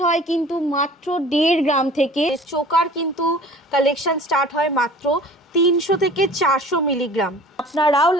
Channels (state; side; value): normal; both; correlation 0.45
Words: হয় কিন্তু মাত্র 1.5 গ্রাম থেকে। চোকার কিন্তু কালেকশন স্টার্ট হয় মাত্র 300 থেকে 400 মিলিগ্রাম। আপনারাও